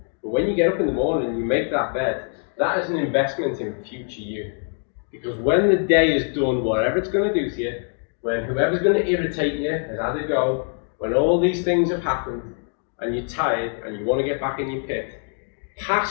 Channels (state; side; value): silent; right; 57 dB below the other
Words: But when you get up in the morning and you make that bed, that is an investment in future you. Because when the day is done, whatever it's going to do to you, when whoever's going to irritate you has had a go, when all these things have happened, and you're tired and you want to get back in your pit,